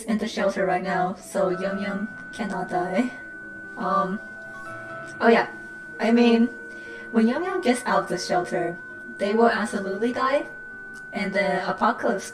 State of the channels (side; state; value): both; identical; correlation 1.00